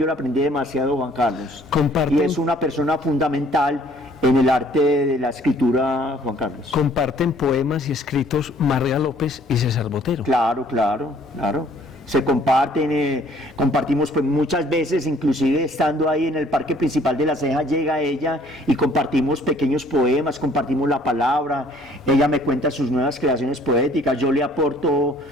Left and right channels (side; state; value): both; normal; correlation 0.58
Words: le aprendí demasiado, Juan Carlos. Comparten, y es una persona fundamental en el arte de la escritura, Juan Carlos. Comparten poemas y escritos Marga López y César Botero. Claro, claro, claro. Se comparten, compartimos pues muchas veces, inclusive estando ahí en el parque principal de La Ceja, llega ella y compartimos pequeños poemas, compartimos la palabra, ella me cuenta sus nuevas creaciones poéticas, yo le aporto,